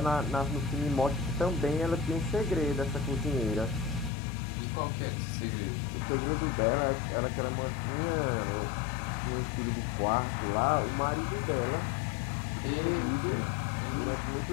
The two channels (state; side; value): drops out; right; at 4.1 s